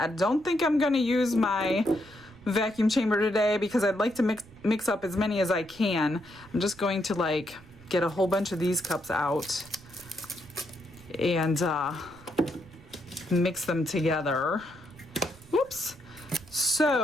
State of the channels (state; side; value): noise; right; rumble, 23 dB below the sound